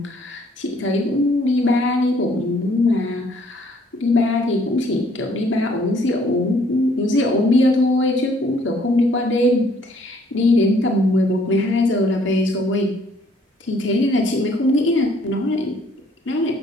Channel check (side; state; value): both; normal; correlation 0.62